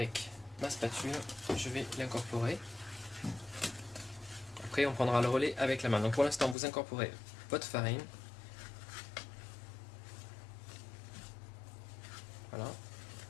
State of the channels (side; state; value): right; drops out; at 6.6 s